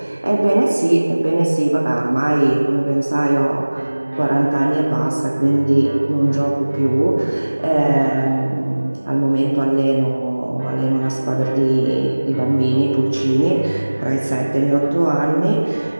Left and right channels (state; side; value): inverted; both; correlation -1.00